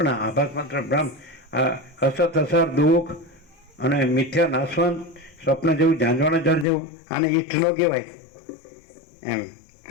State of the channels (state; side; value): drops out; right; at 6.7 s